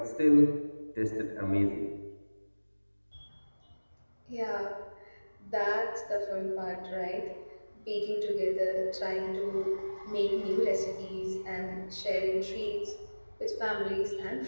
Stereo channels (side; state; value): both; inverted; correlation -1.00